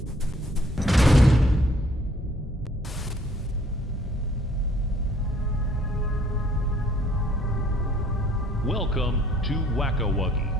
Welcome to Wacko Wuggy.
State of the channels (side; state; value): both; normal; correlation 0.61